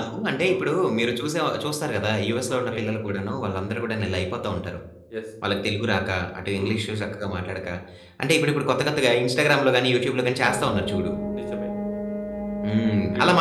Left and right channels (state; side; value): identical; both; correlation 1.00